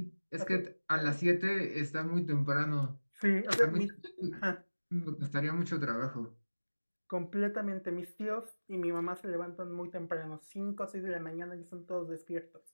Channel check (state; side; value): inverted; both; correlation -1.00